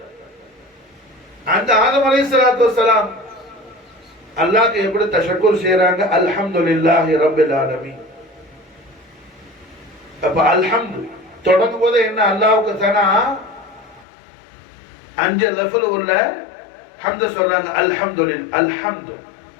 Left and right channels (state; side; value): drops out; right; at 14.1 s